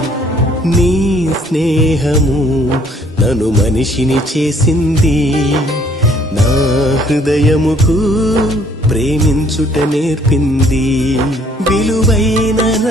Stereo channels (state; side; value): normal; both; correlation 0.61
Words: నీ స్నేహము నన్ను మనిషిని చేసింది, నా హృదయముకు ప్రేమించుట నేర్పింది. విలువైన